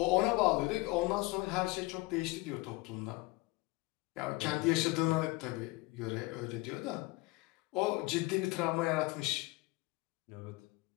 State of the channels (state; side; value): quieter; right; 22.7 dB